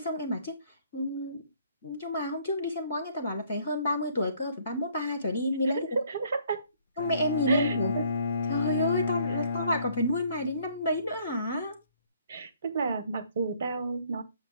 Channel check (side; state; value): both; inverted; correlation -0.62